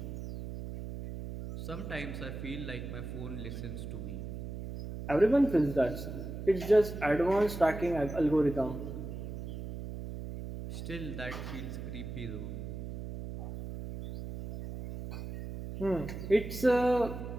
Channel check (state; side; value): noise; right; hum, 8 dB below the sound